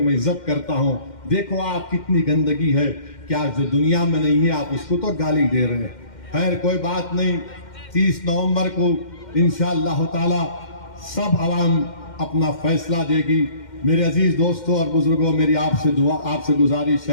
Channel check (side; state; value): right; late; 2.1 ms